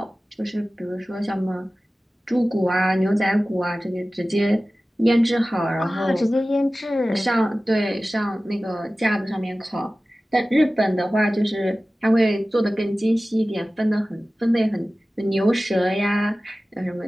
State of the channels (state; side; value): normal; both; correlation 0.96